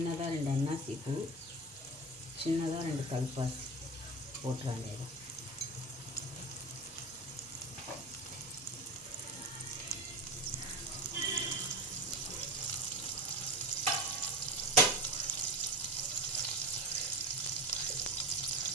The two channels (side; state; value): both; normal; correlation 0.26